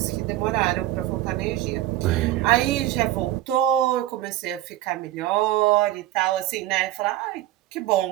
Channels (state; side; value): quieter; left; 14.4 dB